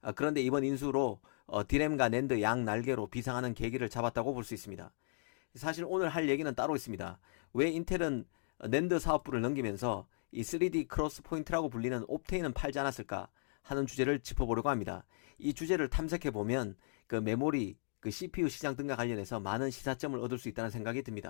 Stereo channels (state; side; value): silent; right; digital silence